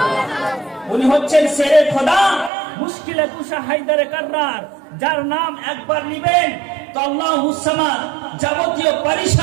উনি হচ্ছেন শেরে খোদা মুশকিলে কুশা হায়দারে কাররার, যার নাম একবার নিবেন তো আল্লাহুস সামাদ, যাবতীয়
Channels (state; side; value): drops out; left; at 2.5 s